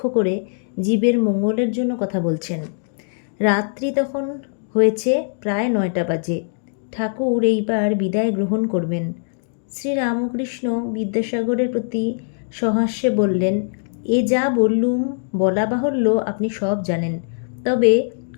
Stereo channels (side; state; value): right; silent; digital silence